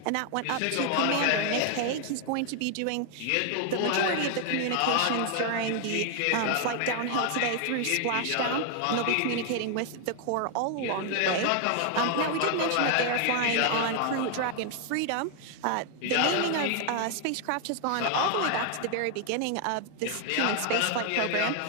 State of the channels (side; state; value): both; different; correlation 0.00